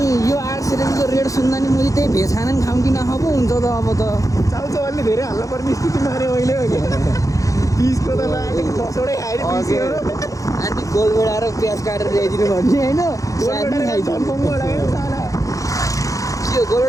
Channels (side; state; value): right; late; 0.16 ms